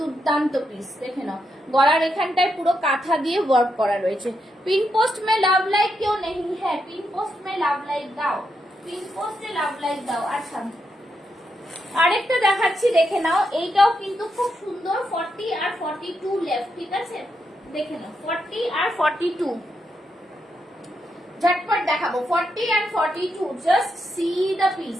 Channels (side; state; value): both; normal; correlation 0.83